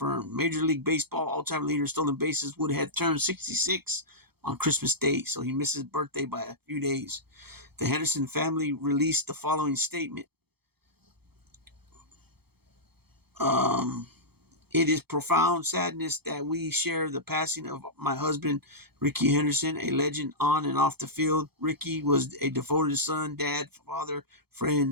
Major League Baseball all-time leader stolen bases would have turned 66 on Christmas Day, so he missed his birthday by a few days. The Henderson family released the following statement. It is profound sadness that we share the passing of my husband, Ricky Henderson, a legend on and off the field. Ricky was a devoted son, dad, father,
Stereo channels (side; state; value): left; late; 0.96 ms